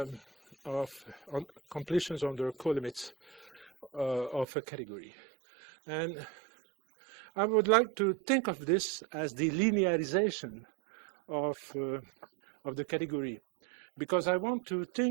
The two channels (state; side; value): drops out; left; at 4.5 s